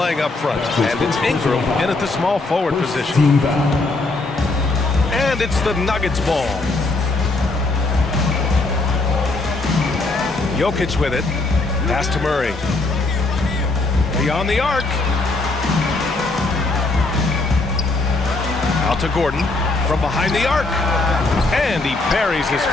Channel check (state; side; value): quieter; right; 3.2 dB